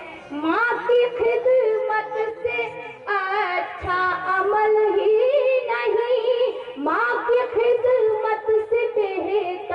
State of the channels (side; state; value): both; identical; correlation 1.00